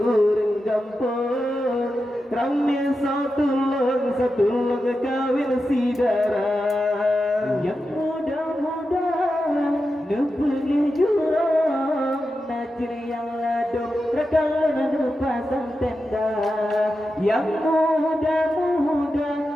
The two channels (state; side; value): normal; both; correlation 0.90